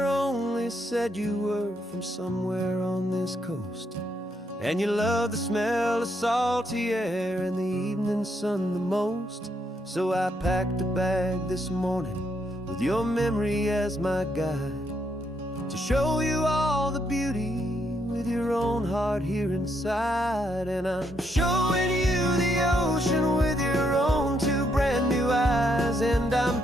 only said you were from somewhere on this coast, and you love the smell of salty air and the evening sun the most. So I packed a bag this morning with your memory as my guide, to show you all the beauty with your own heart here inside. And I'm showing you the ocean with your own two brand new eyes, and I'm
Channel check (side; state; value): both; normal; correlation 0.76